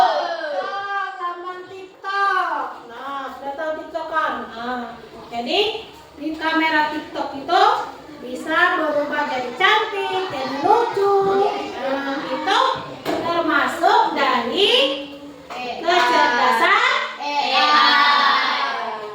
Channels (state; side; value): identical; both; correlation 1.00